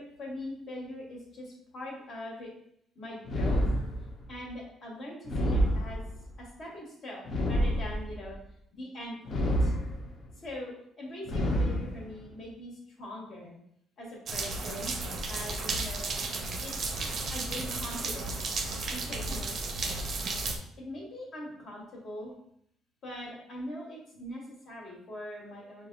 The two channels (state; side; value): normal; both; correlation 0.75